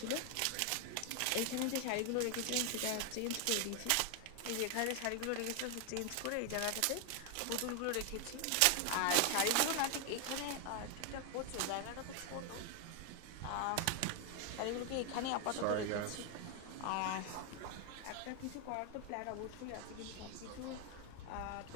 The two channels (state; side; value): different; both; correlation 0.01